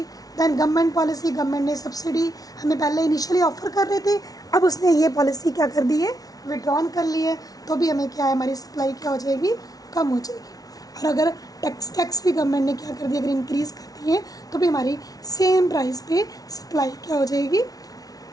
दैन गवर्नमेंट पॉलिसी, गवर्नमेंट ने सब्सिडी हमें पहले इनिशियली ऑफर कर रहे थे, अब उसने ये पॉलिसी क्या कर दी है, विड्रॉन कर ली है, तो भी हमें क्या है, हमारी सप्लाई क्या हो जाएगी, कम हो जाएगी. और अगर टैक्स भी गवर्नमेंट ने क्या कर दिया, अगर इंक्रीज़ कर दिए तो भी हमारी सेम प्राइस पे सप्लाई क्या हो जाएगी,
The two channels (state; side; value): late; right; 0.18 ms